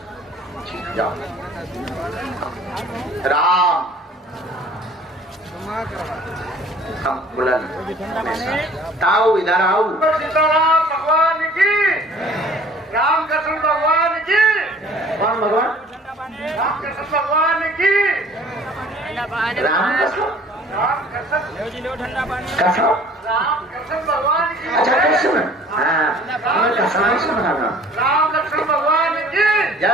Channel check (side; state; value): both; normal; correlation 0.51